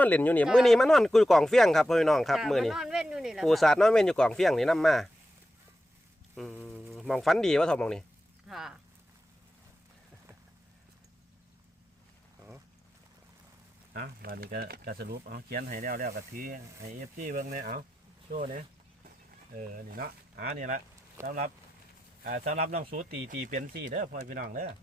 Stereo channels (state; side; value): normal; both; correlation 0.90